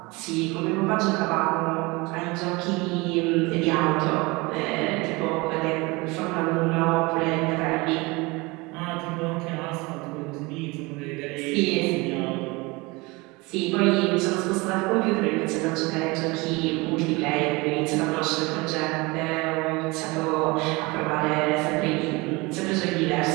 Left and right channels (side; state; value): left; quieter; 24.6 dB